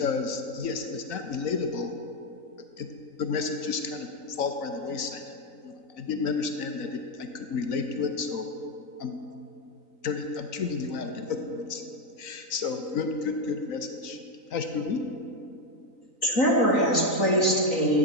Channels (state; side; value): late; right; 3.9 ms